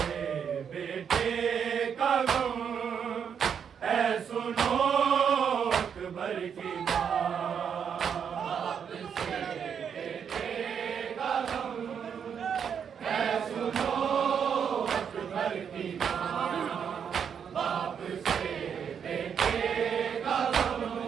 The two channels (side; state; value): left; quieter; 7.5 dB